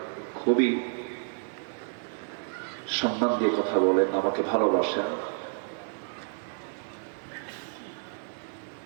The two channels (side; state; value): left; silent; 58 dB below the other